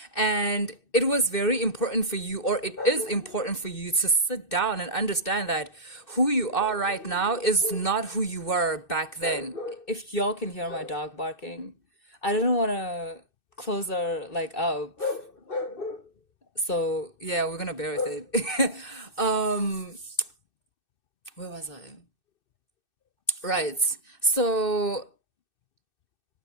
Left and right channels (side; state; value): right; late; 2.6 ms